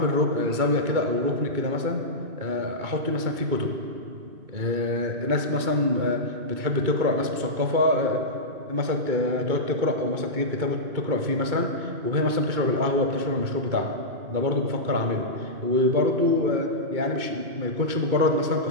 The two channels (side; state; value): left; late; 2.3 ms